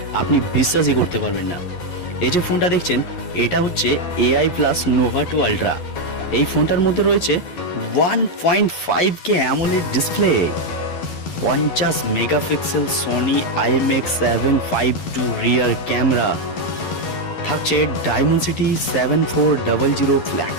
আপনি বিশ্বাসই করতে পারবেন না। এই যে ফোনটা দেখছেন, এটা হচ্ছে এআই প্লাস নোভা 2 আলট্রা। এই ফোনটার মধ্যে রয়েছে 1.5K AMOLED display, 50 megapixel Sony IMX752 rear camera, থাকছে ডায়মেনসিটি 7400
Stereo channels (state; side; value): late; right; 11 ms